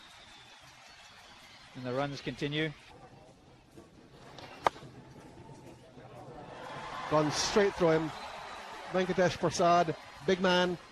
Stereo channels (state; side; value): identical; both; correlation 1.00